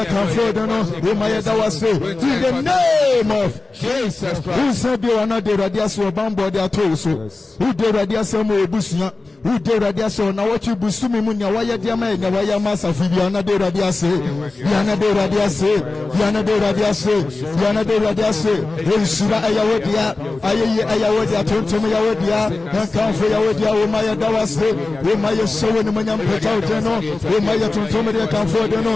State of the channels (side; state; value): right; quieter; 3.4 dB